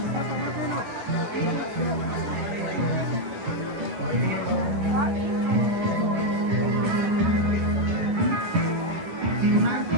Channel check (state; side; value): late; left; 10 ms